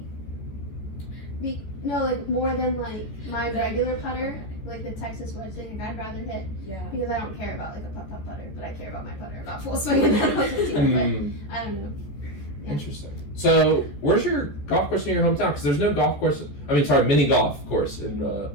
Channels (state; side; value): late; right; 14 ms